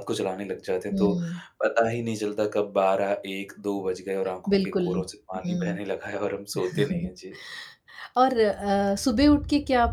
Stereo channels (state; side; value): identical; both; correlation 1.00